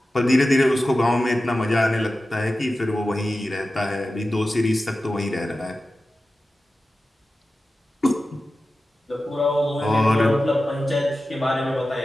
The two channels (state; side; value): normal; both; correlation 0.94